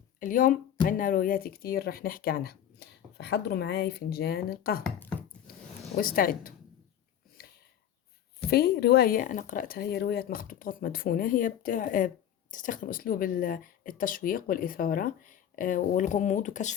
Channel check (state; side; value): quieter; right; 10.2 dB